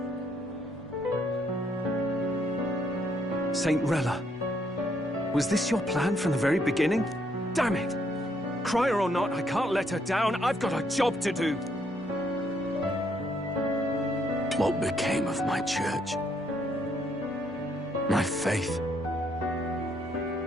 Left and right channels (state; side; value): normal; both; correlation 0.72